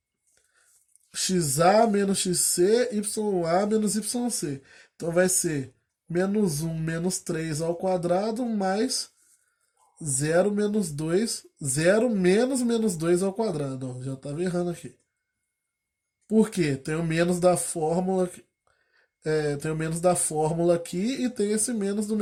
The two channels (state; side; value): identical; both; correlation 1.00